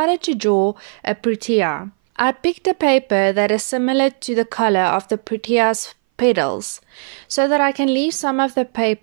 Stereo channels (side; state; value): left; silent; 61 dB below the other